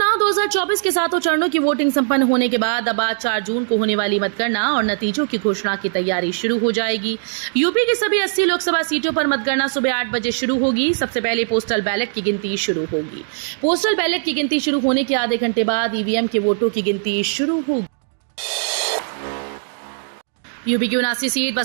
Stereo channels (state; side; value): silent; left; digital silence